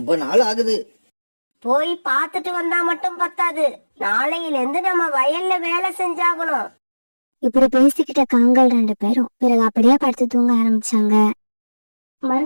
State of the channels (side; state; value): both; inverted; correlation -1.00